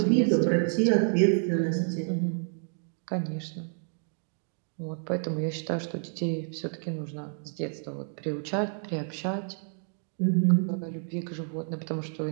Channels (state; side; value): silent; left; 58 dB below the other